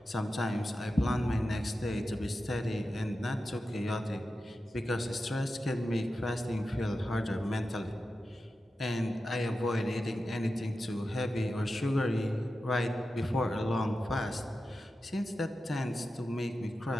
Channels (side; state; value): both; normal; correlation 0.91